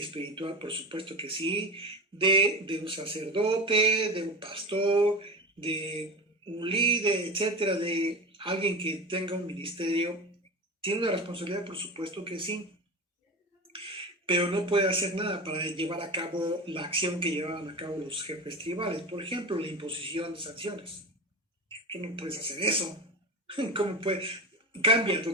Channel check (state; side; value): normal; both; correlation 0.26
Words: por supuesto que sí, de un sacerdote, de un pastor, de un líder, etcétera, de alguien que tenga un ministerio. Tiene una responsabilidad, por supuesto que sí, pero no puede hacer nada para llevar a cabo la acción que llevaban a cabo los jefes tribales. Por ejemplo, la imposición de sanciones. Tú no puedes hacer eso. ¿Cómo puede? Cambia